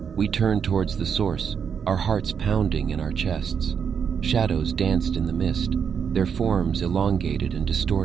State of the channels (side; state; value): left; quieter; 7.1 dB